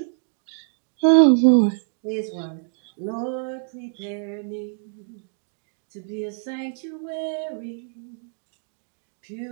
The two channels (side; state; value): left; silent; digital silence